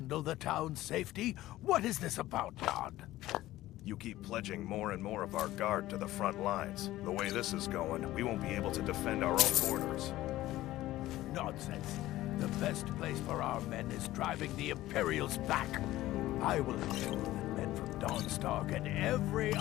the town's safety? What is this about, Don? You keep pledging more and more of our guard to the front lines. The way this is going, we won't be able to defend our own borders. Nonsense. The best place for our men is driving the Imperials back. I will ensure that men from Dawnstar get every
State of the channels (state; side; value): quieter; right; 15.8 dB